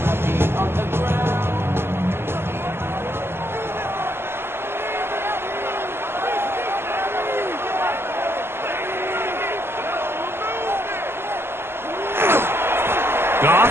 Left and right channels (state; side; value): late; left; 0.11 ms